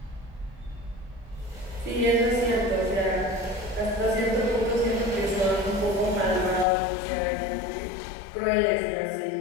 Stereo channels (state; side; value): drops out; right; at 6.7 s